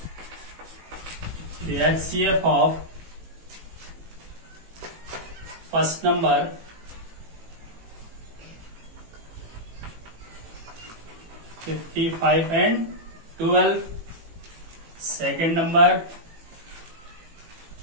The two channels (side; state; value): left; late; 18 ms